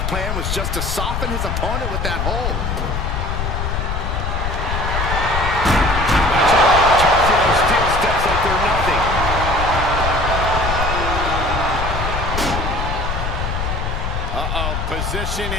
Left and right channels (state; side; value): noise; left; rumble, 2 dB below the sound